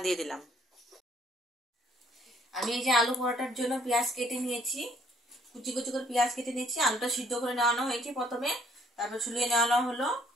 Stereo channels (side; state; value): both; normal; correlation 0.64